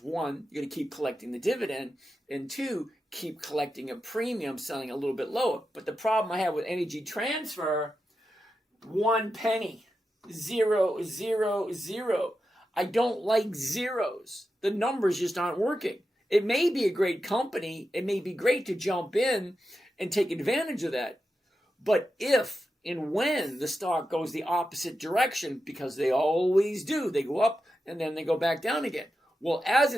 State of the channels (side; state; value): both; normal; correlation 0.89